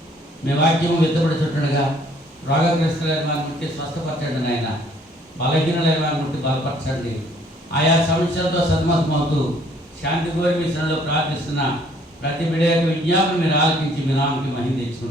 మీ వాక్యము విత్తబడుతుండగా రోగగ్రస్తులైన వారిని ముట్టి స్వస్థపరచండి నాయన. బలహీనులైన వారిని ముట్టి బలపరచండి. ఆయా సమస్యలతో సతమతమవుతూ శాంతి కోరి మీ శ్రమలో ప్రార్థిస్తున్న ప్రతి బిడ్డ యొక్క విజ్ఞాపన మీరు ఆలకించి మీ నామకి మహిమ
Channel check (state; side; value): normal; both; correlation 0.61